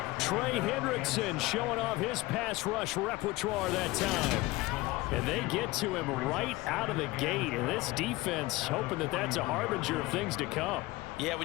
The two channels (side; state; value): right; quieter; 20.2 dB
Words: Trey Hendrickson showing off his pass rush repertoire that time. And they get to him right out of the gate. And this defense hoping that that's a harbinger of things to come. Yeah,